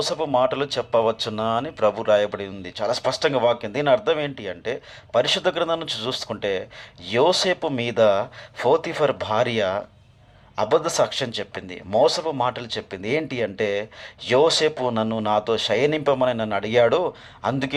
మాటలు చెప్పవచ్చునా అని ప్రభు రాయబడి ఉంది. చాలా స్పష్టంగా వాక్యం. దీని అర్థం ఏంటి అంటే, పరిశుద్ధ గ్రంథం నుంచి చూసుకుంటే యోసేపు మీద పోతీఫర్ భార్య అబద్ధ సాక్ష్యం చెప్పింది, మోసపు మాటలు చెప్పింది. ఏంటి అంటే, యోసేపు నాతో శయనింపమని నన్ను అడిగాడు,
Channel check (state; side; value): identical; both; correlation 1.00